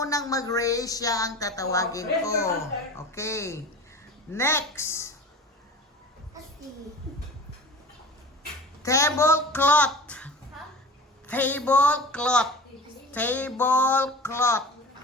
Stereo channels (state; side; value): normal; both; correlation 0.37